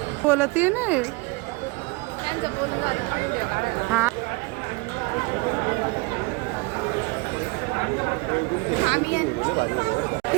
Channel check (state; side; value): quieter; left; 26.4 dB